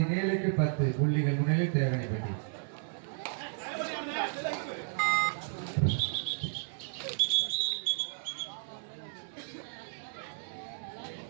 10 புள்ளிகள் முன்னிலையில் தேவனிப்பட்டி.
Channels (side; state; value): left; silent; 56 dB below the other